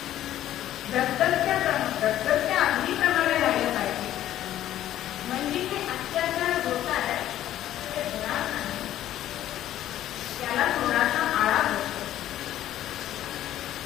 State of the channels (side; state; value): right; quieter; 12.6 dB